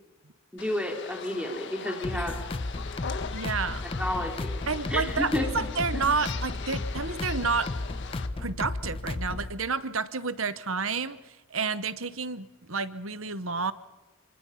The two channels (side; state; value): both; normal; correlation 0.29